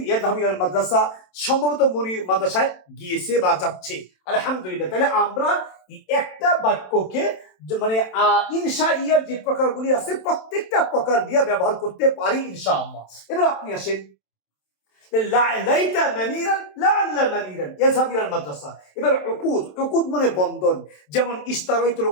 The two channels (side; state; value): right; late; 27 ms